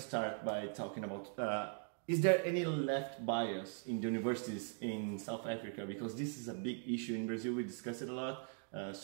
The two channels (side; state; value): left; silent; 51 dB below the other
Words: start by talking about, is there any left bias in the universities in South Africa? Because this is a big issue in Brazil, we discuss it a lot.